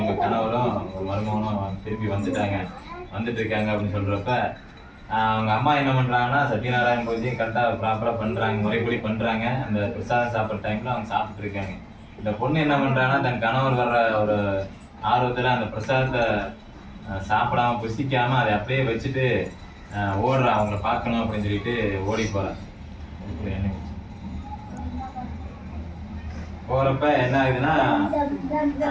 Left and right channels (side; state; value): both; identical; correlation 1.00